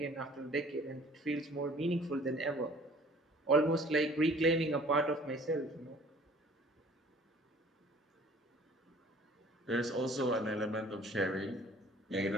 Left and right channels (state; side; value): normal; both; correlation 0.52